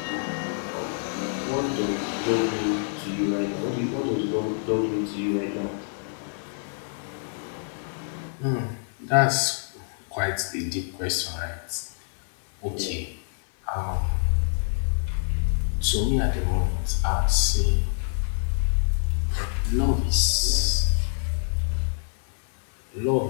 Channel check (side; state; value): right; silent; digital silence